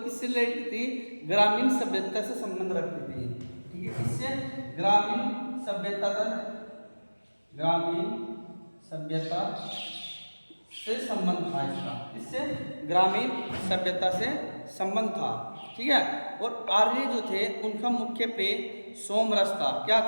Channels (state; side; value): inverted; both; correlation -1.00